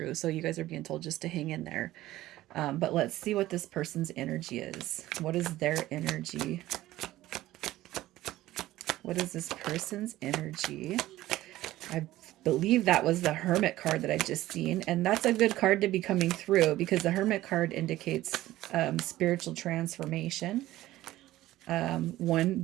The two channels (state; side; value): quieter; left; 15.7 dB